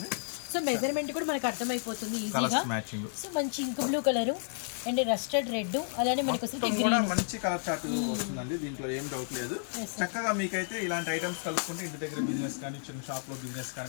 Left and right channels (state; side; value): silent; right; digital silence